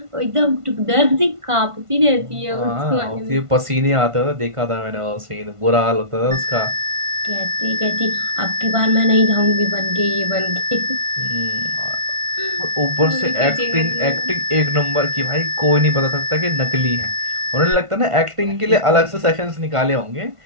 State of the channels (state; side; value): late; left; 1.5 ms